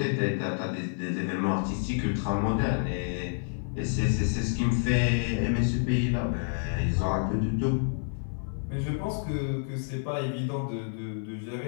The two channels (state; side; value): silent; right; 56 dB below the other